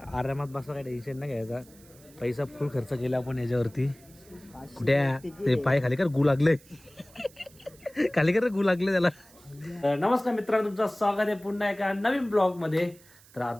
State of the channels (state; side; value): noise; right; hiss, 25 dB below the sound